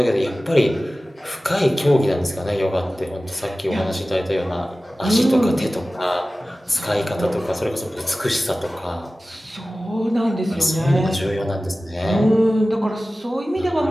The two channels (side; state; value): both; normal; correlation 0.96